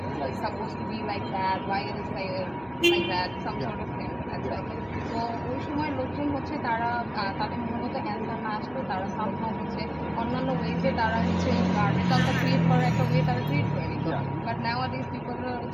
It's supposed to be like that. Why it is like that? Some sort of thing. তো ওই সময় লোকজন হচ্ছে তারা তাদের মূলত অ্যান্সার না আসলে তারা সামহাও হচ্ছে অন্যান্য ওয়েজে তারা হচ্ছে রেজাল্টটা ক্রিয়েট করার একটা ওয়ে তারা ক্রিয়েট করে নিত। বাট নাওয়াডেজ পিপলরা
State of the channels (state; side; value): noise; left; hum, 26 dB below the sound